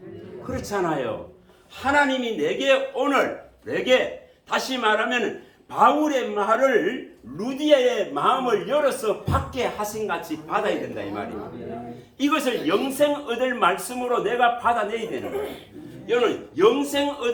그렇잖아요. 하나님이 내게 다시 말하면 바울의 말을 루디아의 마음을 열어서 받게 하신 같이 받아야 된다 이 말입니다. 이것을 영생 얻을 말씀으로 내가 받아내야 되는 거예요. 여러분 영생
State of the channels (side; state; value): both; identical; correlation 1.00